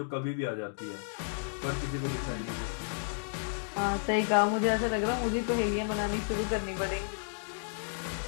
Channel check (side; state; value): right; silent; digital silence